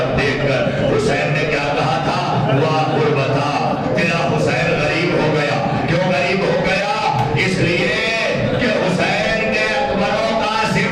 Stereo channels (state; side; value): identical; both; correlation 1.00